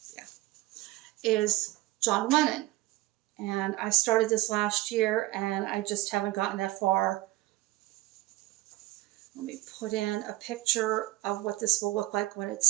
Yeah, is John Lennon. And I started this last year and I just haven't gotten that far. Let me put in a picture of what this will look like when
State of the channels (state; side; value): quieter; left; 18.3 dB